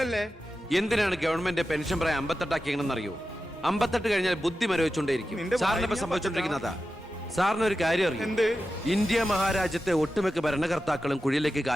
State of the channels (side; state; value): both; normal; correlation 0.92